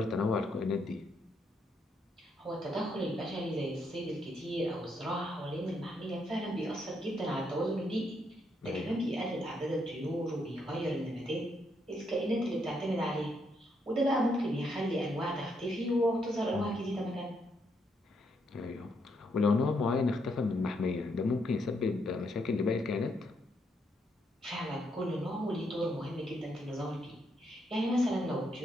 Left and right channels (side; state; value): both; normal; correlation 0.76